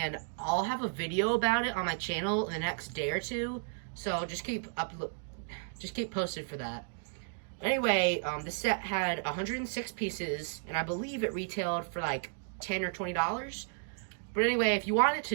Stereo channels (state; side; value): silent; left; digital silence